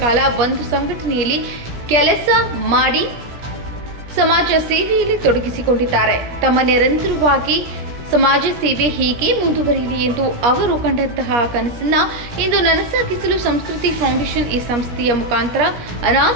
ಕಾಲ ಒಂದು ಸಂಘಟನೆಯಲ್ಲಿ ಕೆಲಸ ಮಾಡಿ ಸಮಾಜ ಸೇವೆಯಲ್ಲಿ ತೊಡಗಿಸಿಕೊಂಡಿದ್ದಾರೆ. ತಮ್ಮ ನಿರಂತರವಾಗಿ ಸಮಾಜ ಸೇವೆ ಹೀಗೆ ಮುಂದುವರಿಯಲಿ ಎಂದು ಅವರು ಕಂಡಂತಹ ಕನಸನ್ನು ಇಂದು ನನಸಾಗಿಸಲು ಸಂಸ್ಕೃತಿ ಫೌಂಡೇಶನ್ ಈ ಸಂಸ್ಥೆಯ ಮುಖಾಂತರ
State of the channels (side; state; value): left; late; 17 ms